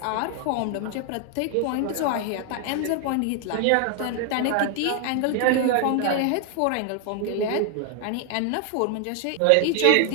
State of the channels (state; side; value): different; both; correlation 0.00